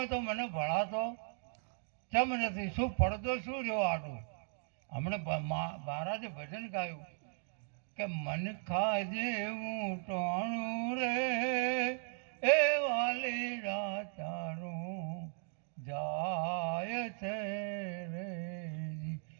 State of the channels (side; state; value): left; silent; 53 dB below the other